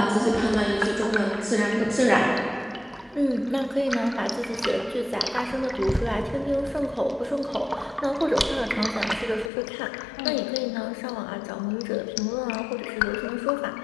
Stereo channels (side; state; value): right; drops out; at 9.5 s